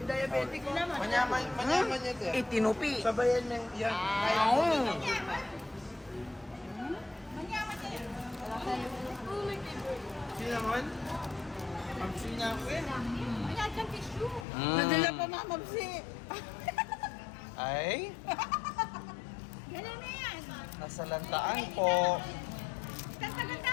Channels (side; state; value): right; drops out; at 14.5 s